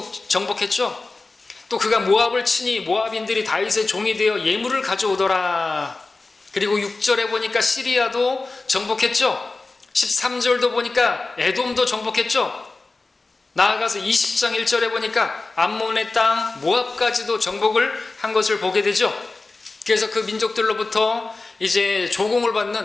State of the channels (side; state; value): right; quieter; 3.5 dB